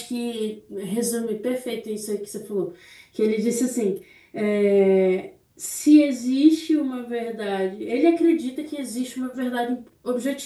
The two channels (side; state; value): both; identical; correlation 1.00